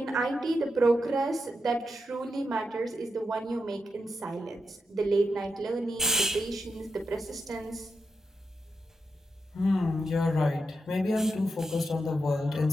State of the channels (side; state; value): both; normal; correlation 0.86